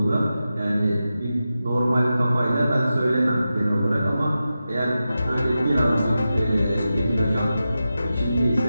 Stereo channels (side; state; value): both; inverted; correlation -0.92